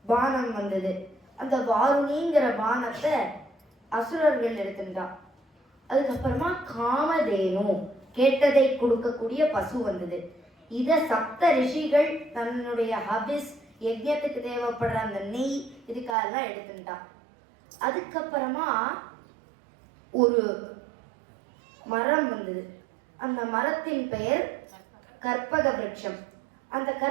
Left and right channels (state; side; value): drops out; left; at 16.2 s